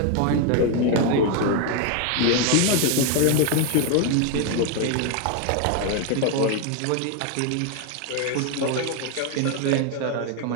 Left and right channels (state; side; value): different; both; correlation 0.01